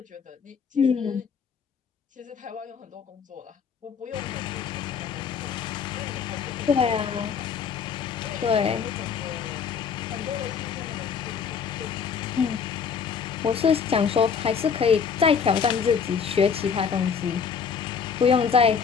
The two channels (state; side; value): quieter; right; 6.5 dB